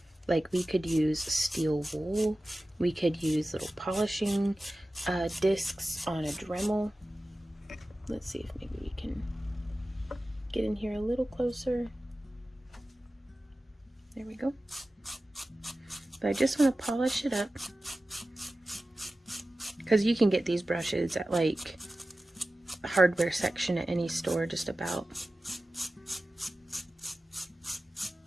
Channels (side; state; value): both; normal; correlation 0.95